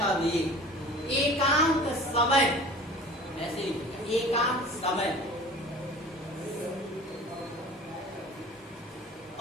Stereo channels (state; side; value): normal; both; correlation 0.42